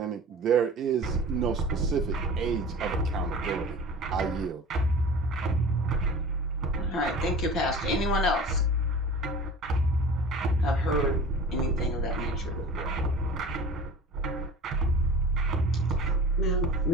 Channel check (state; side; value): normal; both; correlation 0.39